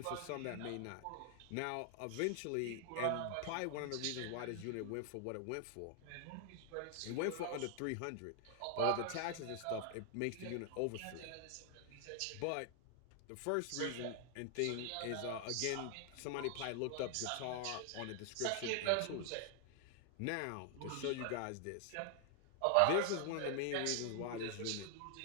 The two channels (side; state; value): both; different; correlation 0.00